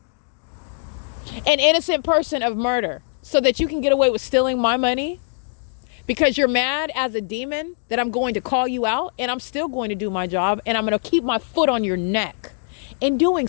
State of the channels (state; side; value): silent; right; digital silence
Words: An innocent person of murder, so that you can get away with stealing my money because you're mad as a demon that I'm going to call you out, and I'm still going to do my job, and I'm going to keep my foot on your neck in doing